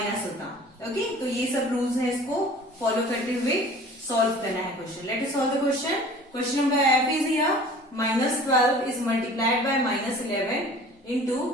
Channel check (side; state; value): both; normal; correlation 0.46